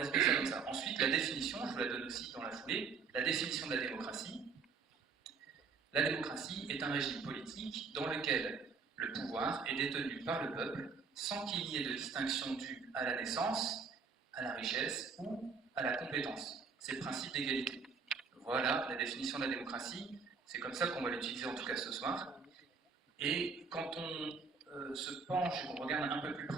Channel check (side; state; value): left; quieter; 5.2 dB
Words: ça comme ça. Ensuite, la définition, je vous la donne aussi dans la foulée, la définition de la démocratie. La démocratie est un régime politique dans lequel le pouvoir est détenu par le peuple, sans qu'il y ait de distinction due à la naissance, à la richesse ou à la compétence. C'est le principe d'égalité. Voilà la définition de la démocratie. C'est comme ça qu'on va l'utiliser en tout cas ce soir. Et quand on se penche et qu'on regarde un peu plus